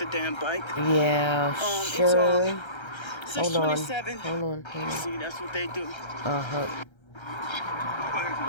the damn bike. Yeah, sure. Hold on. 6:27. Hold on. See, that's what they do. Uh-huh.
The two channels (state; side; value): late; right; 1.3 ms